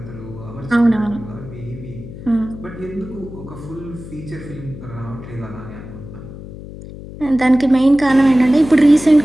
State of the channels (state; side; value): noise; left; hum, 13 dB below the sound